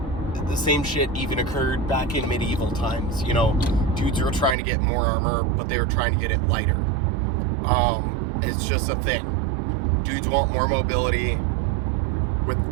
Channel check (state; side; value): drops out; left; at 4.5 s